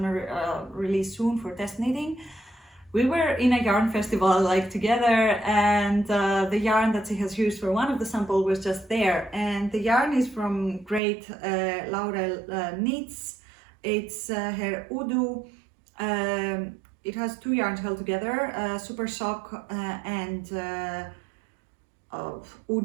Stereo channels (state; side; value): drops out; left; at 11.0 s